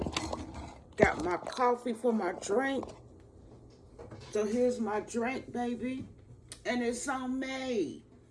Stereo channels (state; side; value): identical; both; correlation 1.00